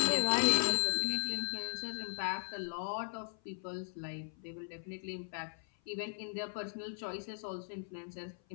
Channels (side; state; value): right; silent; 53 dB below the other